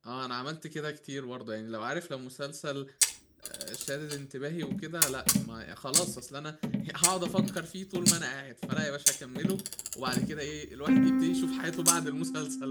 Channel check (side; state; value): both; identical; correlation 1.00